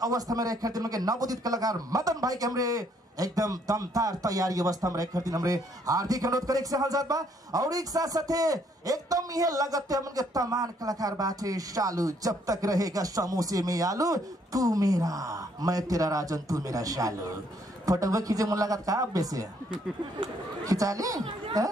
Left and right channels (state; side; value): normal; both; correlation 0.68